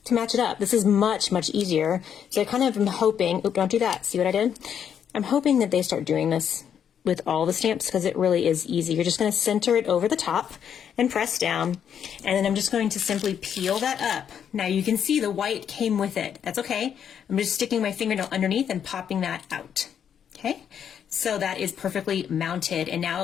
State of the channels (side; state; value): right; quieter; 8.4 dB